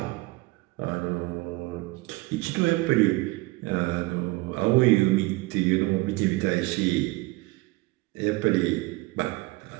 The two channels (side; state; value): left; quieter; 22.1 dB